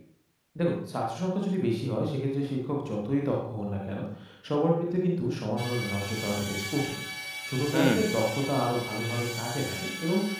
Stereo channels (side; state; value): both; identical; correlation 1.00